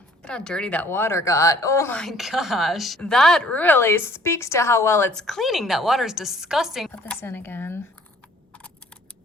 Look at how dirty that water got. Oh my gosh. That really speaks to how well it's cleaning. That water is disgusting. Put this in again.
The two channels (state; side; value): normal; both; correlation 0.56